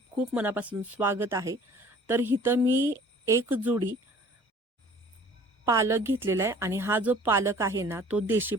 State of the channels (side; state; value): both; normal; correlation 0.50